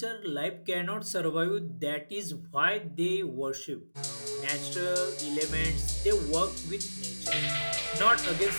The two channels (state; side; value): inverted; both; correlation -1.00